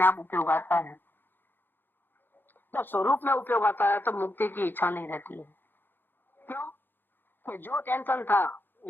आप उपयोग आता है। जब स्वरूप में उपयोग आता है तो मुक्ति की इच्छा नहीं रहती है। क्यों? कि जो टेंशन था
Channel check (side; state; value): right; late; 0.097 ms